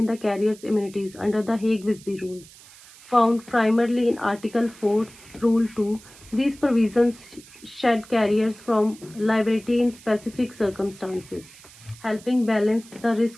the carrier's immunities under the Hague-Visby rules, found primarily in Article 4, Rule 2. These provisions shed carriers from liability in specific circumstances, helping balance the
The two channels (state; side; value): noise; right; hiss, 22 dB below the sound